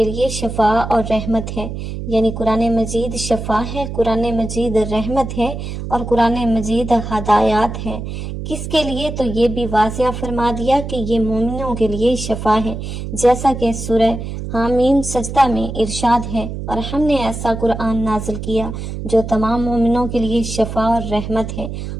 لیے شفا اور رحمت ہے، یعنی قرآن مجید شفا ہے، قرآن مجید رحمت ہے اور قرآن مجید ہدایات ہے۔ کس کے لیے؟ تو یہ بھی واضح فرما دیا کہ یہ مومنوں کے لیے شفا ہے، جیسا کہ سورہ حامیم سجدہ میں ارشاد ہے، اور ہم نے ایسا قرآن نازل کیا جو تمام مومنوں کے لیے شفا اور رحمت ہے۔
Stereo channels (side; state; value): right; noise; hum, 7 dB below the sound